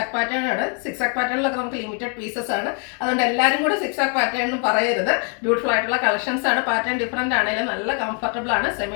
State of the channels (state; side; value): quieter; right; 38.4 dB